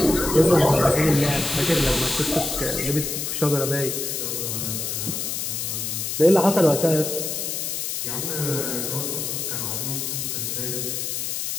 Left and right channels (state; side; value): noise; left; hiss, 3 dB below the sound